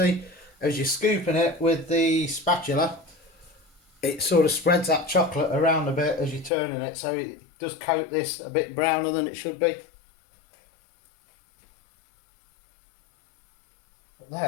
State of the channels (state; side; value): drops out; right; at 6.5 s